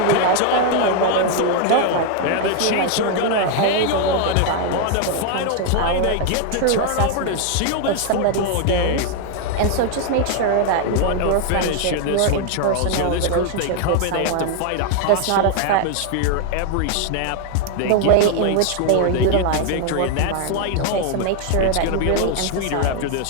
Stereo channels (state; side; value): different; both; correlation 0.00